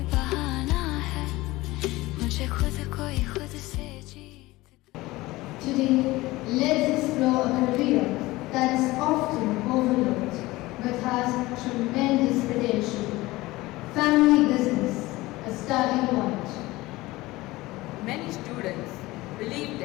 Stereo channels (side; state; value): right; quieter; 19.4 dB